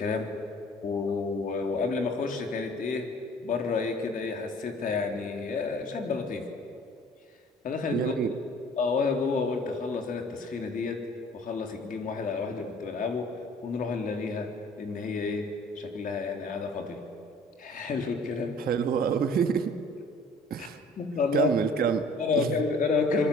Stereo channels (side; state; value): both; normal; correlation 0.51